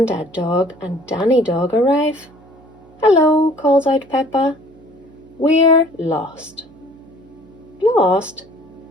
Dog and Danny Dog arrive. Hello, calls out Peppa. We're lost. Lost?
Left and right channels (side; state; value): right; noise; hum, 26 dB below the sound